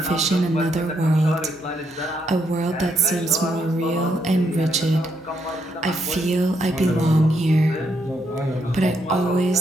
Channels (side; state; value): both; normal; correlation 0.76